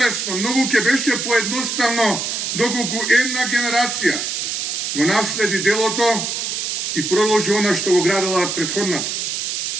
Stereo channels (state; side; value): noise; right; hiss, 2 dB below the sound